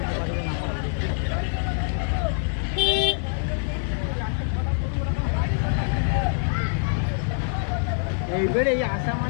এইবার এই আসা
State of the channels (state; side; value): silent; right; digital silence